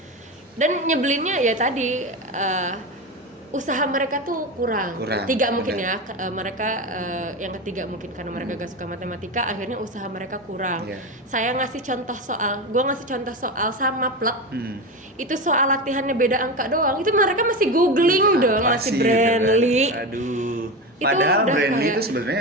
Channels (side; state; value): both; normal; correlation 0.21